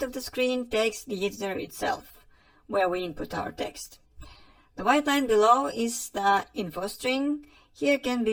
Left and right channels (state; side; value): identical; both; correlation 1.00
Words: of the screen takes the editor itself, where we input our text. The white line below is the info string. Here can